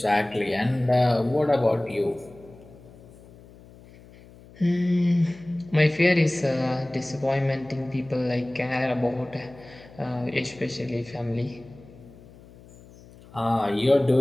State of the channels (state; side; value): noise; left; hum, 22 dB below the sound